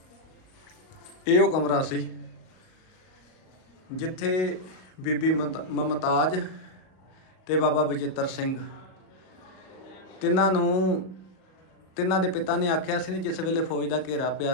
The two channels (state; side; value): late; right; 38 ms